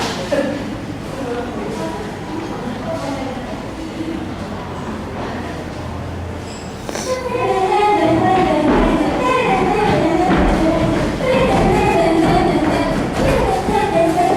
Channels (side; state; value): both; identical; correlation 1.00